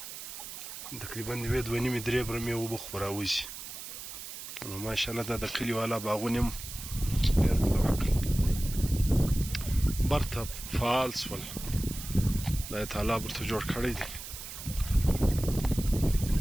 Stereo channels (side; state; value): right; noise; hiss, 10 dB below the sound